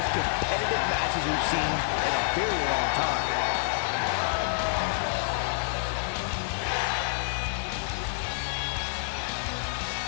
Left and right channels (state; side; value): silent; right; 59 dB below the other